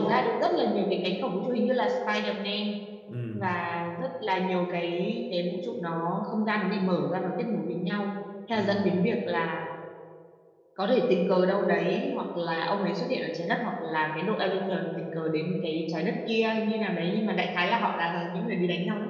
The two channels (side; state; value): both; identical; correlation 1.00